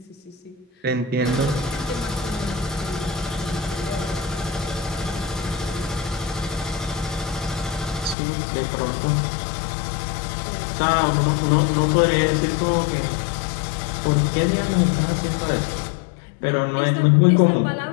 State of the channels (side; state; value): right; drops out; at 8.2 s